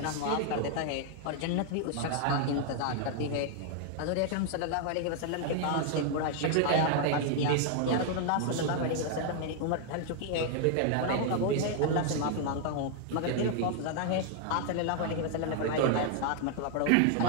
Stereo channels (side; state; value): both; different; correlation 0.00